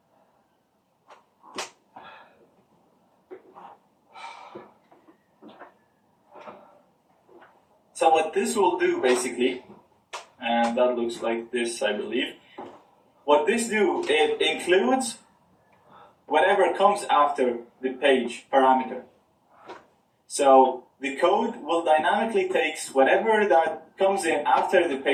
So what this will do basically, and that looks like this, I believe. What this do, it includes whatever comes after the page parameter. So the code will dynamically takes whatever that comes in after the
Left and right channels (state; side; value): identical; both; correlation 1.00